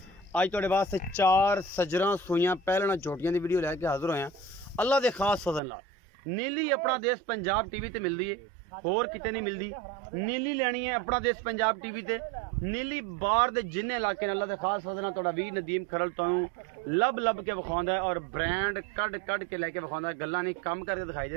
अज तुहाडे वास्ते 4 सजरां सूइयां पहलना झोटियां की वीडियो लैके हाजिर होया अल्लाह के खास फजल नाल। नीली अपना देश पंजाब टीवी ते मिलती है, होर किते नहीं मिलती। नीली लैनी है अपना देश पंजाब टीवी ते। नीली बार दे जिन्ने इलाके ने अल्लाह के खास फजल नाल तुहाडा वीर नदीम खरल तुहानूं लब लब के विखाउंदा है और ब्रांड कढ़ के लैके विखाउंदा है। गल्लां नहीं काम करके दिखाई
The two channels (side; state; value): left; drops out; at 5.6 s